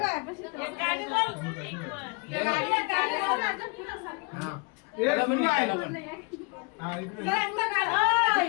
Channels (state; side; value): quieter; right; 30.9 dB